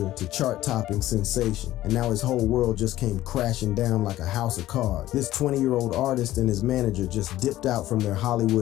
to chart-topping sensation, and now his whole world just came crashing down like a house of cards. This 20-year-old artist and his manager just dipped out from their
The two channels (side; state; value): right; quieter; 14.8 dB